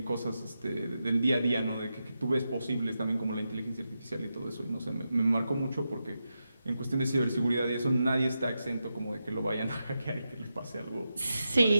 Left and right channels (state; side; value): inverted; both; correlation -0.88